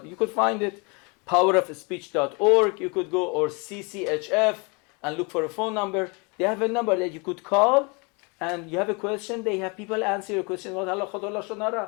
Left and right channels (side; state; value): right; quieter; 31.0 dB